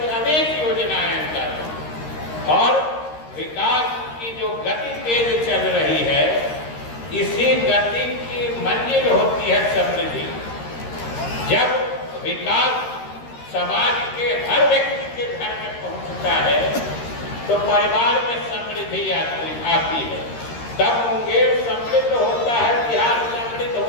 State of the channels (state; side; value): late; right; 13 ms